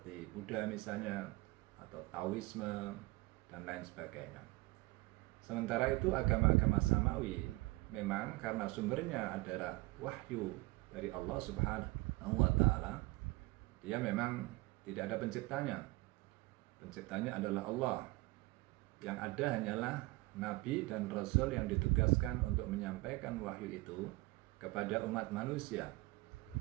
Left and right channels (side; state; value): left; quieter; 22.1 dB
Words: Buddha misalnya, atau Taoisme, dan lain sebagainya. Sementara itu agama-agama samawi memang karena sumbernya adalah wahyu dari Allah Subhanahu wa Ta'ala, dia memang tidak ada penciptanya. Penciptanya adalah Allah. Yang ada hanyalah nabi dan rasul yang ditugaskan untuk menyampaikan wahyu itu kepada umat manusia.